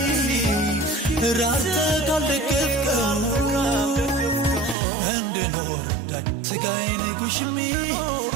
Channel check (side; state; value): left; drops out; at 4.8 s